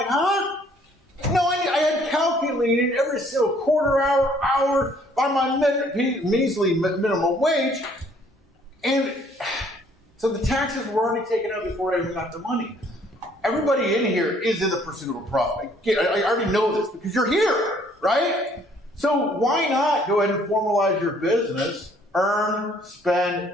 huh? No, I had calculated every single quarter hour by my measly minimum wage, and so the taxes were already taken out before I even got the money. Everybody in here is in the pursuit of a profit. I already know this because you're here, right? So why not go ahead and formalize your business, earn,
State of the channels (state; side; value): normal; both; correlation 0.61